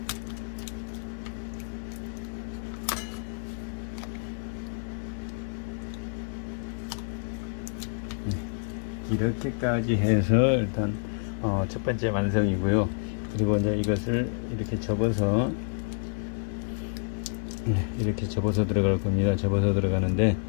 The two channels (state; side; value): silent; right; 59 dB below the other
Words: 이렇게까지 해서 일단 첫 번째 완성이고요. 그리고 이제 이것을 이렇게 접어서 이렇게 접어서 들어갈 겁니다. 접어서 들어가는데